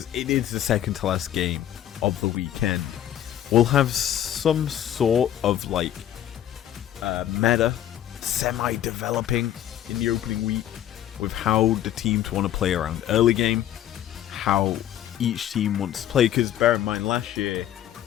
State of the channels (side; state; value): right; quieter; 11.5 dB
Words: it is the second to last game of the weekend, we'll have some sort of like meta semi-developing in the opening week with how the teams want to play around early game, how each team wants to play. Because bear in mind, last year